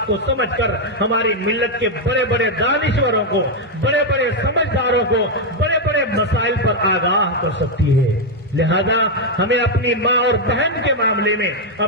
کو سمجھ کر ہماری ملت کے بڑے بڑے دانشوروں کو، بڑے بڑے سمجھداروں کو بڑے بڑے مسائل پر آگاہ کر سکتی ہے۔ لہذا ہمیں اپنی ماں اور بہن کے معاملے میں،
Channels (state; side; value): normal; both; correlation 0.01